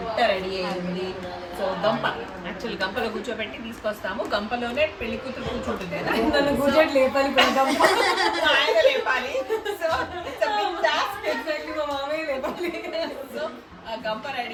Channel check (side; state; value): both; identical; correlation 1.00